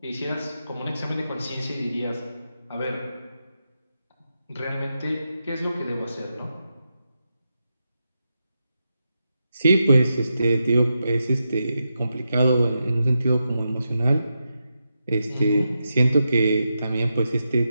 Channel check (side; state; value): both; inverted; correlation -0.87